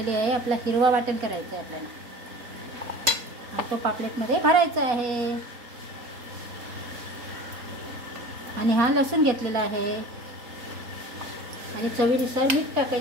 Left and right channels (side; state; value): left; late; 4.2 ms